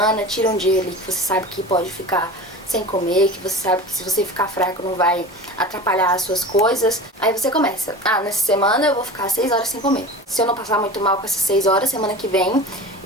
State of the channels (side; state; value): both; normal; correlation 0.34